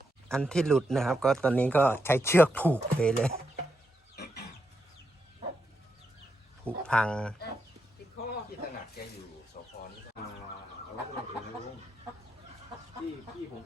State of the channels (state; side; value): normal; both; correlation 0.83